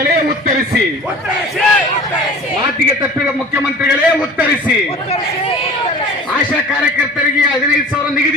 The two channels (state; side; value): normal; both; correlation 0.42